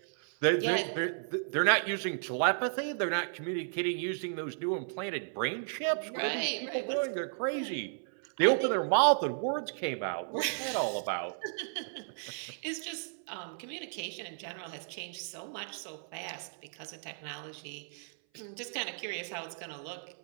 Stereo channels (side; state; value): left; silent; 55 dB below the other